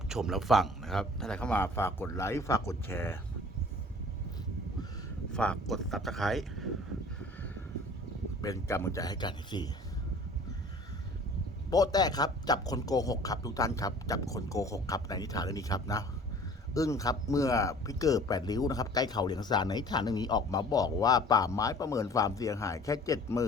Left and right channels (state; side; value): normal; both; correlation 0.48